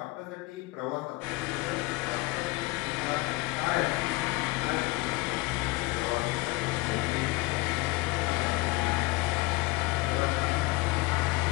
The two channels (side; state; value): right; quieter; 22.5 dB